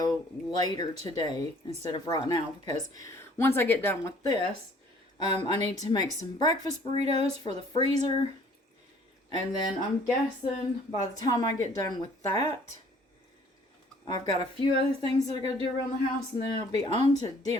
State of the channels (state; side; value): normal; both; correlation 0.56